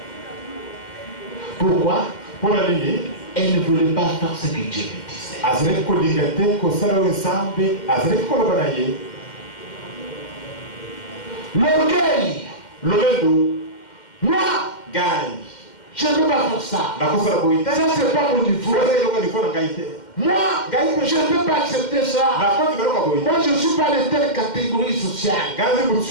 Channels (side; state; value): right; late; 2.1 ms